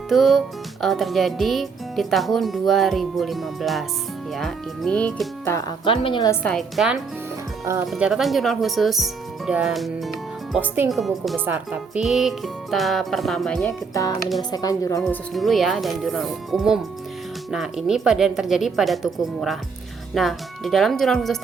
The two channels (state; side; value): quieter; left; 5.2 dB